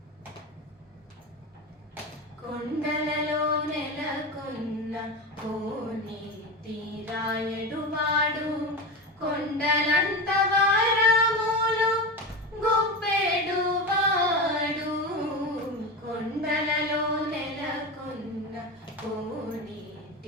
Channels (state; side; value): normal; both; correlation 0.21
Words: కొండలలో నెలకొన్న కోనేటి రాయడువాడు కొండలంత వారములు గొప్పెడువాడు కొండలలో నెలకొన్న